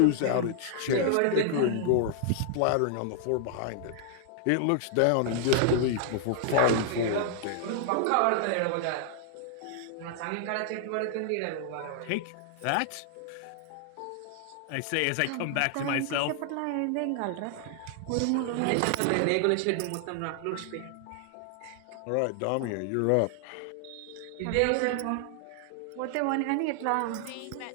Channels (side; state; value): both; different; correlation 0.00